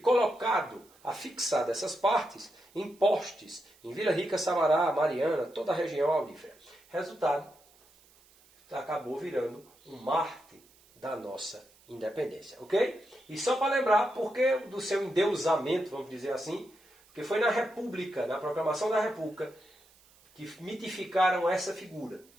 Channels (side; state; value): right; noise; hiss, 29 dB below the sound